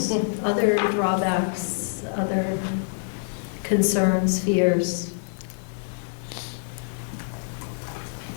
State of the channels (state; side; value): silent; right; 58 dB below the other